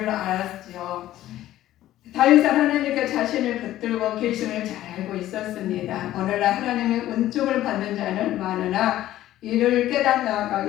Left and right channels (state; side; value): quieter; right; 13.9 dB